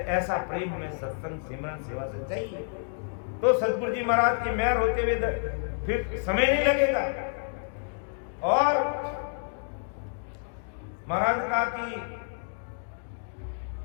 ऐसा प्रेम हमें सत्संग सिमरन सेवा से चाहिए, तो सतगुरु जी महाराज की मेहर होते हुए फिर समय नहीं लगेगा। और महाराज कहा कि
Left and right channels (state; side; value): silent; right; digital silence